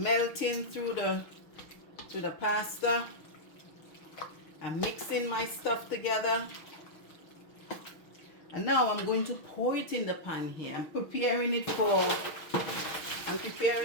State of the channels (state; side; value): late; right; 6.3 ms